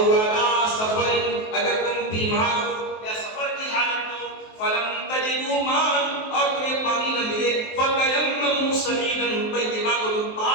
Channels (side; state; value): right; late; 23 ms